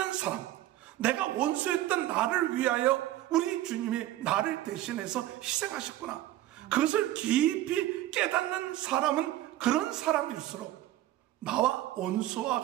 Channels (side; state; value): left; quieter; 14.4 dB